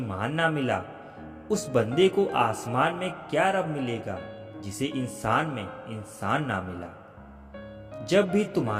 ना मिला, उस बंदे को आसमान में क्या रब मिलेगा जिसे इंसान में इंसान ना मिला। जब भी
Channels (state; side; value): identical; both; correlation 1.00